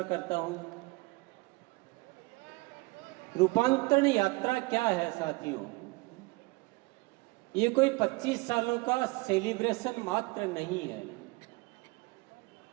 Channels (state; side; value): quieter; left; 25.2 dB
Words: करता हूँ। रूपांतरण यात्रा क्या है साथियों? ये कोई 25 सालों का सेलिब्रेशन मात्र नहीं है।